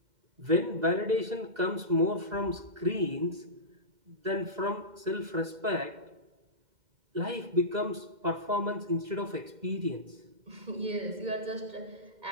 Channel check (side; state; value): left; late; 2.0 ms